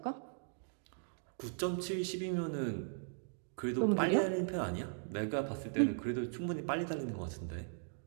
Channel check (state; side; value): silent; left; digital silence